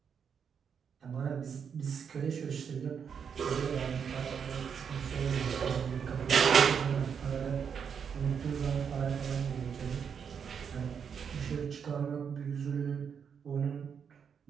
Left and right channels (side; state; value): left; quieter; 7.1 dB